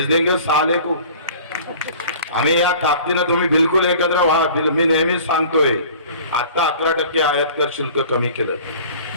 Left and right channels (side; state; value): both; inverted; correlation -0.46